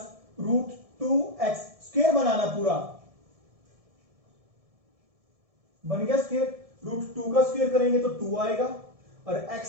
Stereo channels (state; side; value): late; left; 1.7 ms